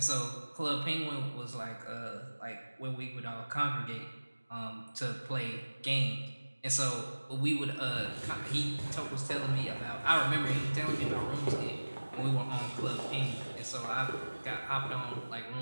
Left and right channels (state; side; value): inverted; both; correlation -1.00